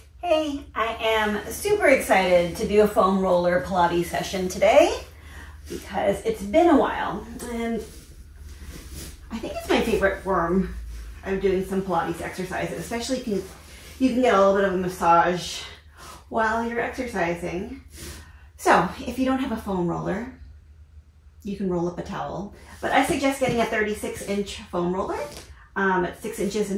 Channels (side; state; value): both; identical; correlation 1.00